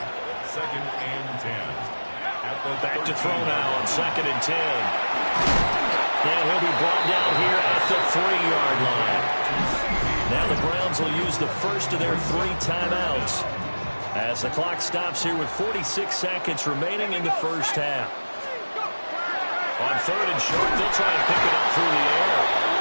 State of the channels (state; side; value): inverted; both; correlation -1.00